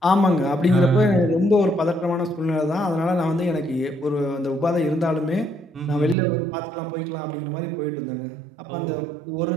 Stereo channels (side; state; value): left; drops out; at 6.2 s